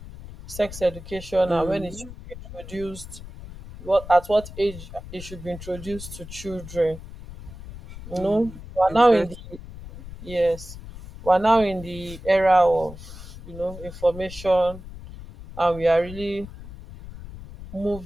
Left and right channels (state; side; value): noise; left; rumble, 14 dB below the sound